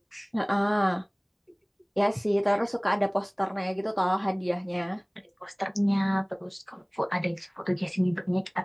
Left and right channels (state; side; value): identical; both; correlation 1.00